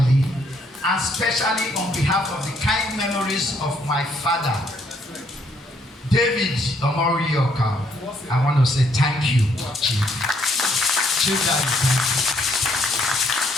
and especially on behalf of the kind memories of my father, David Omorioka, I want to say thank you, Chief. Chief Daddy, thank you.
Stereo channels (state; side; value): normal; both; correlation 0.69